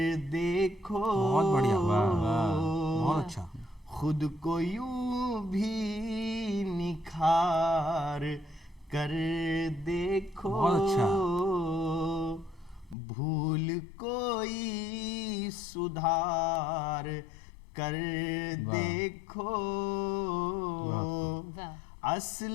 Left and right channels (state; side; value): drops out; right; at 13.0 s